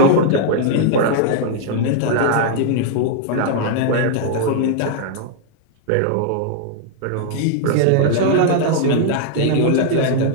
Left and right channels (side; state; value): both; different; correlation -0.01